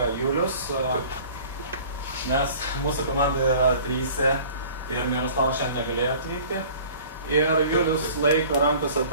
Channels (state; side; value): inverted; both; correlation -0.47